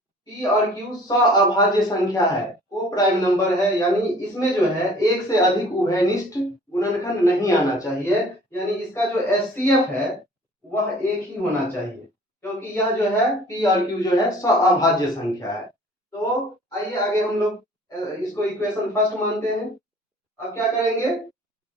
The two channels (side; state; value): both; normal; correlation 0.51